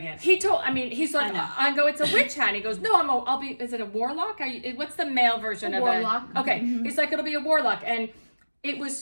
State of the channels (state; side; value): inverted; both; correlation -1.00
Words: it. He's like, I know. I go, it's a witch hat. And he goes, no, I'll be, is it a warlock? What's the male version of warlock. it? Okay. He's like, it'll be a warlock. And it